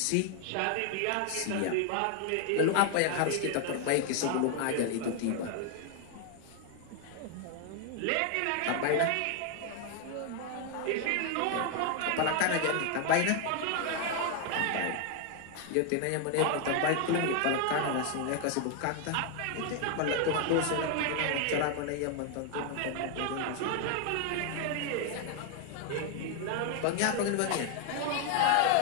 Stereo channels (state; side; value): different; both; correlation 0.00